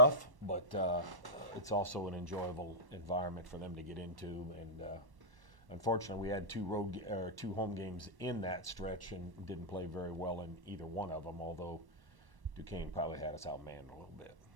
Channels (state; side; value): late; left; 1.1 ms